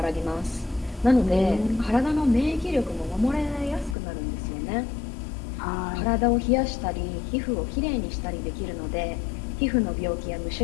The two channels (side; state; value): right; drops out; at 4.0 s